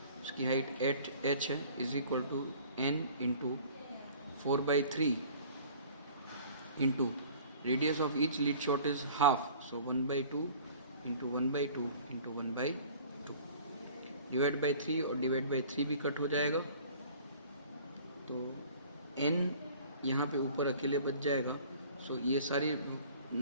उसकी हाइट 8h है, is equal to n into 4/3 into radius of each lead shot is half, so 1/2 into 1/2 into 1/2 divide by 3 और डिवाइड बाई 3 भी कट हो जाएगा, तो n यहाँ पे ऊपर अकेले बच जाएगा. सो ये सारी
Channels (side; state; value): both; inverted; correlation -0.48